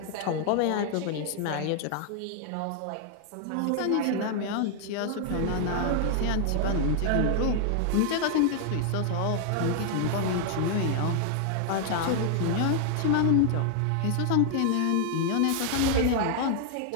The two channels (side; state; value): both; different; correlation 0.00